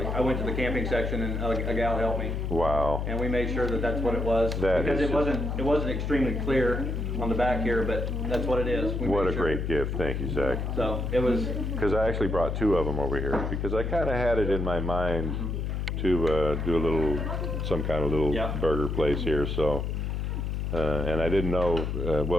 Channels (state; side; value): noise; left; hum, 2 dB below the sound